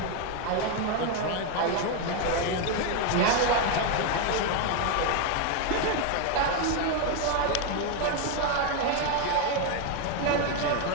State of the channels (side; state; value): both; different; correlation 0.01